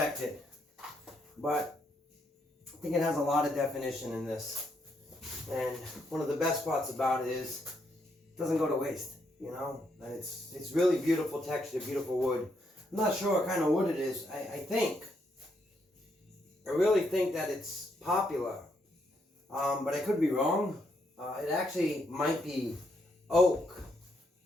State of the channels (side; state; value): both; normal; correlation 0.76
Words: But I think it has a lot of definition in this. And one of the best parts about it is it doesn't go to waste, you know? And it's really beautiful texture, beautiful wood. I'm not sure what kind of wood it is. I really think that it's popular, but I could be wrong. It actually might be oak.